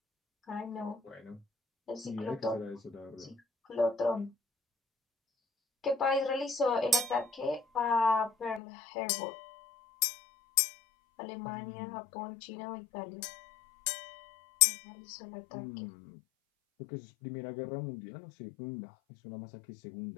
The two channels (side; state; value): right; drops out; at 8.6 s